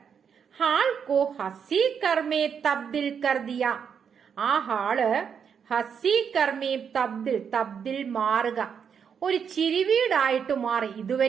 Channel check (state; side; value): quieter; left; 7.2 dB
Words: ഹാൾ കോ ഹസി കർമേ തബ്ദിൽ കർദിയ, ആ ഹാള് ഹസി കർമേ തബ്ദിൽ മാറുക, ഒരു ചിരിവീടായിട്ട് മാറി.